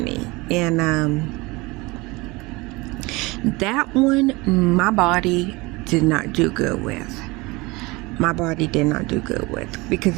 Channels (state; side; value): quieter; left; 23.6 dB